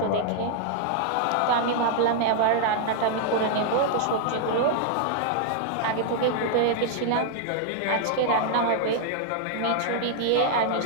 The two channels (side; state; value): both; different; correlation 0.00